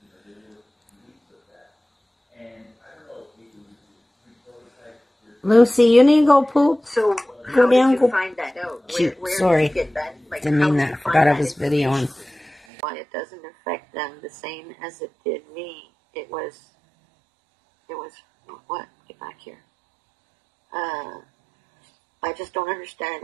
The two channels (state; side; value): drops out; left; at 12.6 s